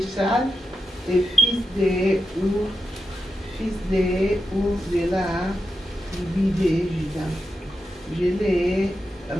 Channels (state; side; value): normal; both; correlation 0.88